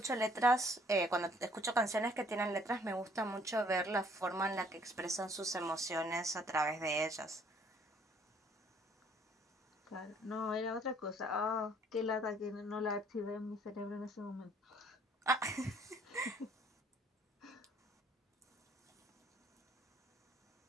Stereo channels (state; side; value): normal; both; correlation 0.61